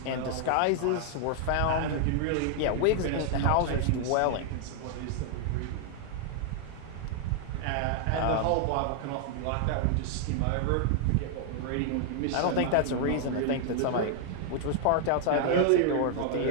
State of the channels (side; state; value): both; different; correlation 0.00